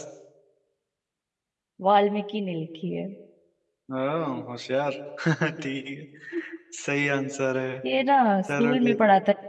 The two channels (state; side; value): identical; both; correlation 1.00